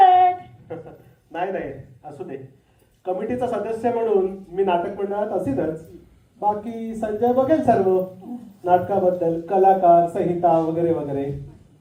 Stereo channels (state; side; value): identical; both; correlation 1.00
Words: आहेत. नाही, असू दे. कमिटीचा सदस्य म्हणून मी नाटक मंडळात असेलच. बाकी संजय बघेल सर्व नाटकाबद्दल, कलाकार, संहिता वगैरे वगैरे.